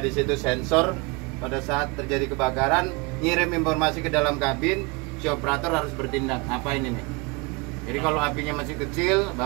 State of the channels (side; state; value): left; quieter; 27.8 dB